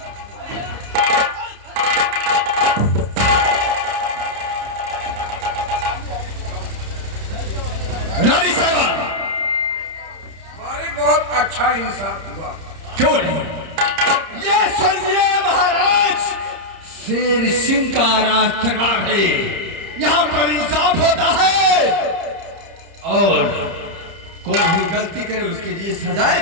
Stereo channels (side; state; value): left; late; 30 ms